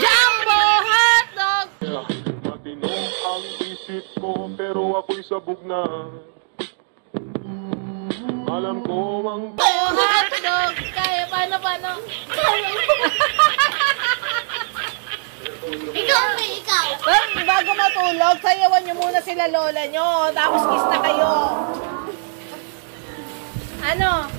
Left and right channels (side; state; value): left; silent; digital silence